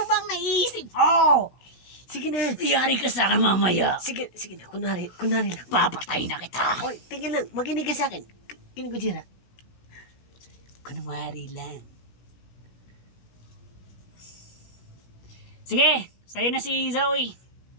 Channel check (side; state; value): right; late; 16 ms